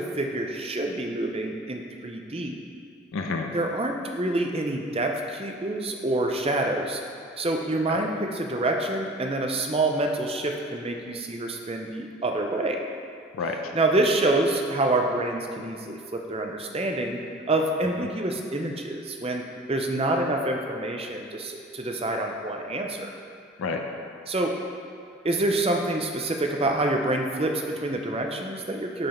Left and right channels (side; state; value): both; normal; correlation 0.43